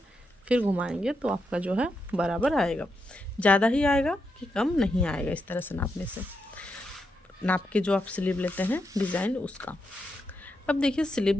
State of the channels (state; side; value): normal; both; correlation 0.83